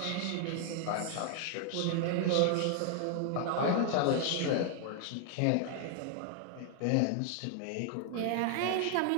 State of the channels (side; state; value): both; different; correlation 0.00